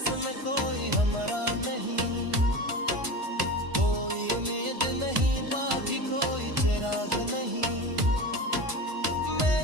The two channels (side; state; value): left; late; 1.5 ms